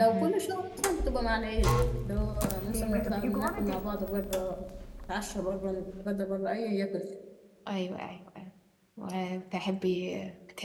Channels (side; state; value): both; identical; correlation 1.00